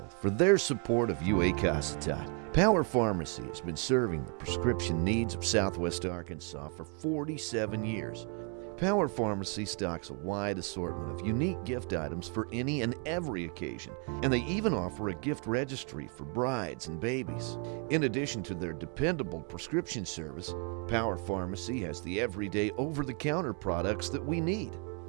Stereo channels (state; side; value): quieter; left; 37.0 dB